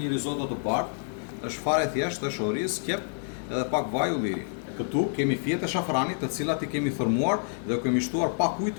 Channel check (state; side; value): silent; right; 59 dB below the other